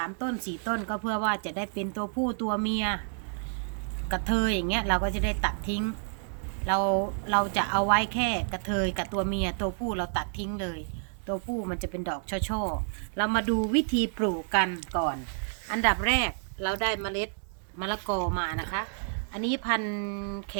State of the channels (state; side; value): silent; left; 58 dB below the other